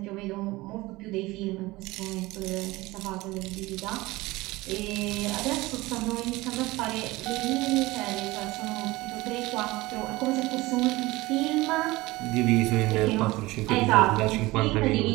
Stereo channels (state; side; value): quieter; left; 20.4 dB